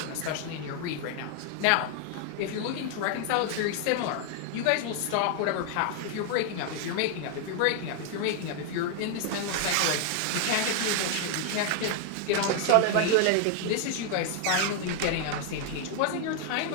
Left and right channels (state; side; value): different; both; correlation 0.00